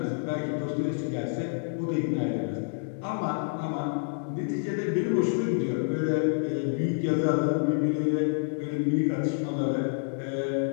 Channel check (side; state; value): right; silent; digital silence